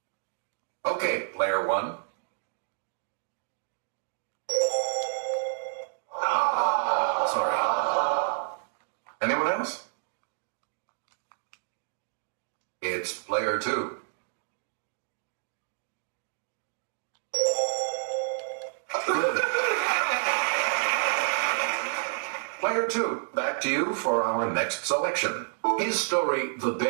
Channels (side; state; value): left; silent; digital silence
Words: Okay, player 1. Sorry. Anyone else? It's player 2. Player 2, back to you for our next selection. His story, The